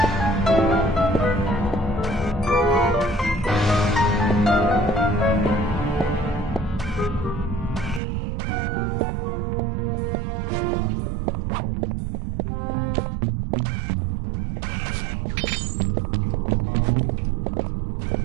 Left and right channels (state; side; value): drops out; left; at 8.0 s